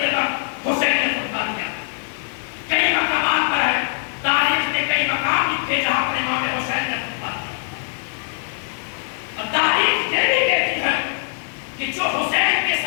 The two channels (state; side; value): silent; right; digital silence